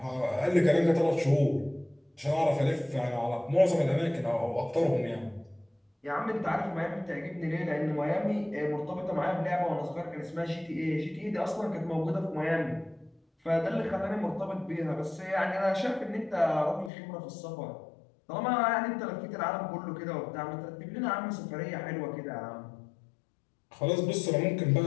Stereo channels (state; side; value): drops out; right; at 16.9 s